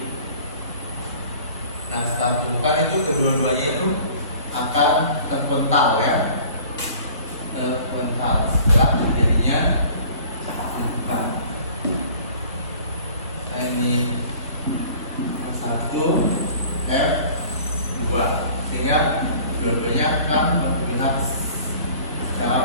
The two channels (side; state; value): both; inverted; correlation -0.49